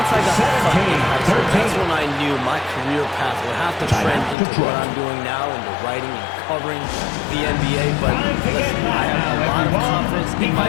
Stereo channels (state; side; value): drops out; right; at 4.4 s